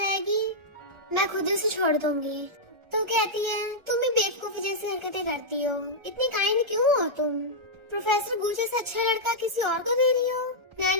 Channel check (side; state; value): left; late; 1.3 ms